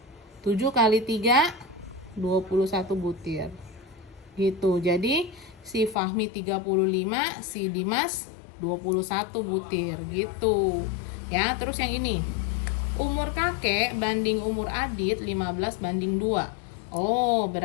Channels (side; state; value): right; drops out; at 6.0 s